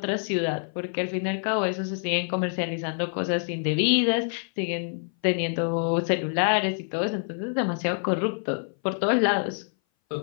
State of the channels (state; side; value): silent; right; 58 dB below the other